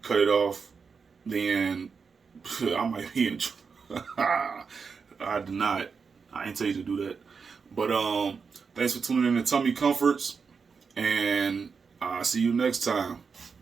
cut it off, then I might be in trouble. I did not. I ain't tell you to do that. But thanks for tuning in to Tummy Comforts, and I'll see you next time.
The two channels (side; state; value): left; quieter; 5.5 dB